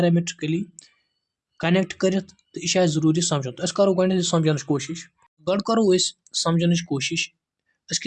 कनेक्ट कर तो यह जरूरी समझुन तो करो गो समझन कोशिश गड करो समझन कोशिश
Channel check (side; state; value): both; identical; correlation 1.00